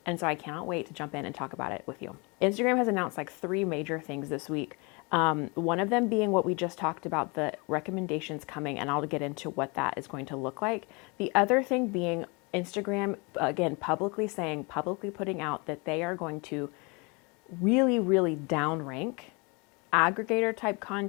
And so I cannot wait to jump in and talk about it with you. Instagram has announced like 3 major things this week. One of them being what we just talked about, the recommendations coming, and I'll get into what that is going to look like. The other thing being Instagram, again, publicly putting out that they are going to really downrank aggregator type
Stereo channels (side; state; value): right; quieter; 29.8 dB